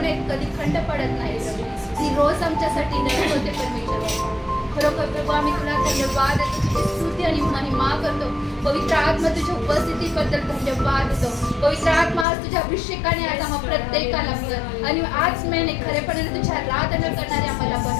कधी खंड पडत नाही प्रभू. ती रोज आमच्यासाठी नवीन होते परमेश्वर. खरोखर प्रभू आम्ही तुला धन्यवाद देतो, तुझी स्तुती आणि महिमा करतो. पवित्र आत्मा तुझ्या उपस्थितीबद्दल धन्यवाद देतो. पवित्र आत्मा आज तुझ्या अभिषेकाने आज आम्हा प्रत्येकाला आणि आज महिने खरेपणाने तुझी आराधना करणारे आम्हाला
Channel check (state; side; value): drops out; right; at 12.2 s